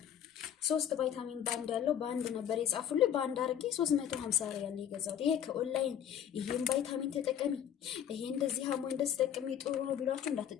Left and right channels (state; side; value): quieter; right; 9.6 dB